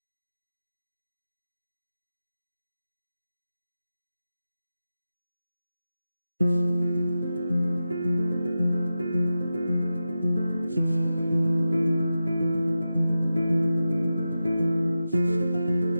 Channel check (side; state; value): both; inverted; correlation -0.92